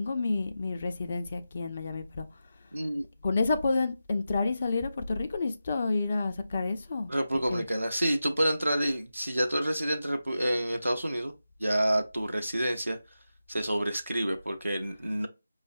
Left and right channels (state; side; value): inverted; both; correlation -0.91